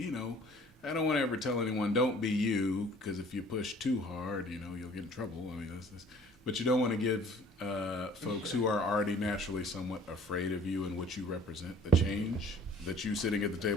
know, I don't want to ever tell anyone don't be you, because if you push too hard, you know, you'll get in trouble. I mean, but you don't want to give folks who are already naturally somewhat afraid of you and what you represent, the change that you sitting at the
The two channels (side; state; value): both; normal; correlation 0.53